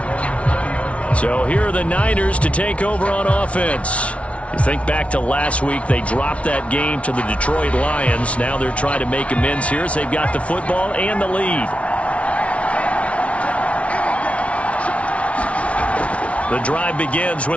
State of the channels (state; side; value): late; right; 0.063 ms